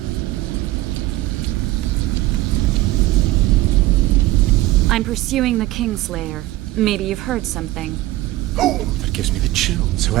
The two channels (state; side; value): quieter; left; 17.1 dB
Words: I'm pursuing the Kingslayer. Maybe you've heard something. Oh, that gives me the chills.